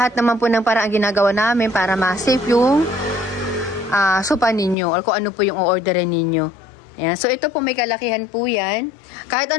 naman po ng parang ginagawa namin para ma-save yung sopa ninyo or kung ano po yung orderin ninyo. Ayan. So, ito po may kalakihan po yan. Kahit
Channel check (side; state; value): right; drops out; at 4.8 s